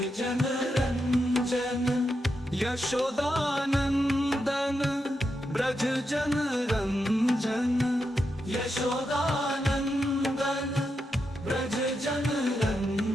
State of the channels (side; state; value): both; normal; correlation 0.85